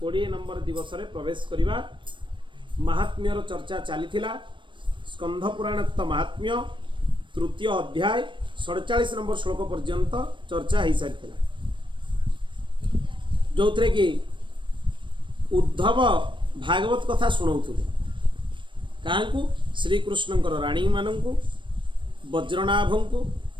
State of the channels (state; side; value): late; left; 0.24 ms